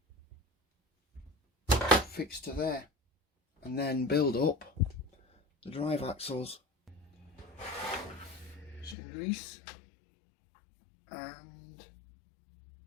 fixed to there and then build up the drive axles. Some grease and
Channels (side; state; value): right; drops out; at 9.0 s